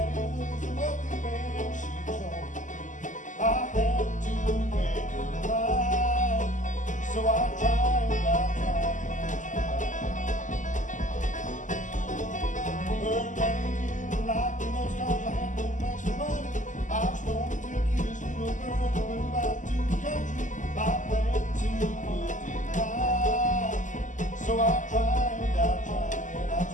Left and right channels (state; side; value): late; right; 0.37 ms